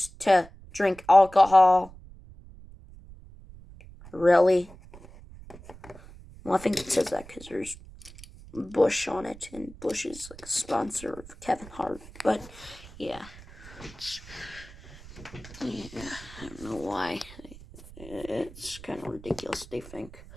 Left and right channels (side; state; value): right; noise; rumble, 18 dB below the sound